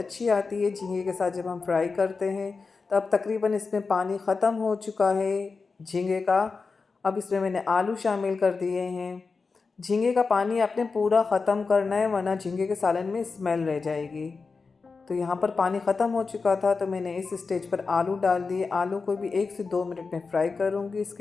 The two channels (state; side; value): quieter; right; 4.5 dB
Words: आती है झींगे के साथ जब हम फ्राई करते हैं। तो अब तकरीबन इसमें पानी ख़त्म हो चुका है झींगे का। अब इसमें मैंने आलू शामिल कर दिए हैं। झींगे का पानी आपने पूरा ख़त्म करना है वरना झींगे के सालन में स्मेल रह जाएगी। तो यहाँ पर पानी ख़त्म हो चुका था तो मैंने इस स्टेज पर आलू डाल दिए। आलू को भी 1 से 2 मिनट में फ्राई करूँगी।